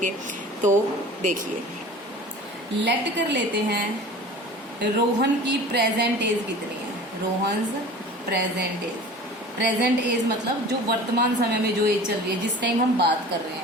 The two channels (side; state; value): both; normal; correlation 0.41